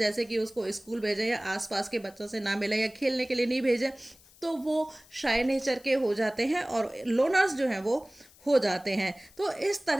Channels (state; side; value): noise; left; hiss, 26 dB below the sound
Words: कि उसको स्कूल भेजें या आसपास के बच्चों से ना मिले या खेलने के लिए नहीं भेजें, तो वो शाय नेचर के हो जाते हैं और लोनर्स जो हैं वो हो जाते हैं। तो इस